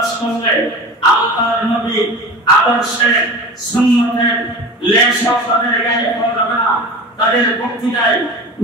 করলে আল্লাহর নবী আদর্শে সুন্নতের লেশও তাদের গায়ে পাওয়া যাবে না। তাদের বক্তৃতায়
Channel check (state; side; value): normal; both; correlation 0.33